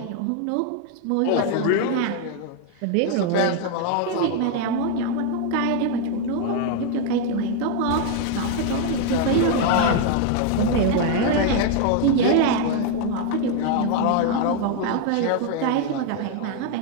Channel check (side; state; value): both; different; correlation 0.01